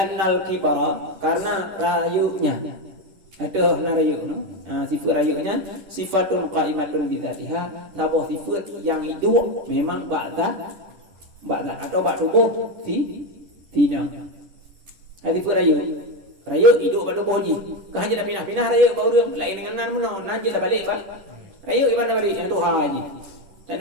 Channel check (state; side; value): late; left; 11 ms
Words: kibara karena rayunya ada rayu sifat rayunya sifatun qa'imatun bi dzatiha tabuh sifat yang hidup memang ba'da atau bak tubuh tina Hati pun raya. Raya hidup pada boji. Kau hanya dah pindah-pindah raya bau dia. Lain dengan nan menang. Nan je dah balik bah. Raya iban dah balik. Yang tu haji. Tak